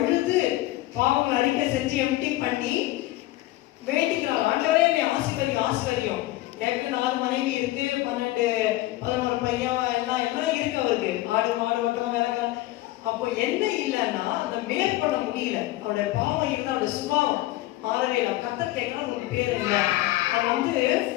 பாவங்கள் அறிக்கை செஞ்சு எம்டி பண்ணி வேண்டிக்கிறார். ஆண்டவரே என்னை ஆசீர்வதியும், ஆசீர்வதியும். ஏற்கனவே 4 மனைவி இருக்கு, 12 11 பையன் எல்லாம் இருக்கு அவருக்கு. ஆடு மாடு ஓட்டம் வேலைக்கார. அப்போ என்ன இல்லைன்னா அதை மேற்கொள்ள முடியல. அவருடைய பாவம் இருந்தா அவருடைய சுபாவம் மாறவே இல்லை. கர்த்தர் கேட்கறா, உனக்கு பேர் என்ன? நான்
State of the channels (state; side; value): quieter; right; 17.2 dB